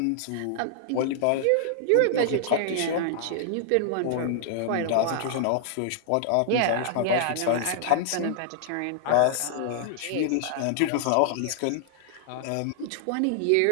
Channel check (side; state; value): both; different; correlation -0.01